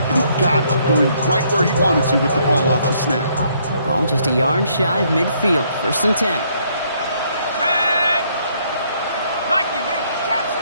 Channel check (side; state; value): both; inverted; correlation -0.68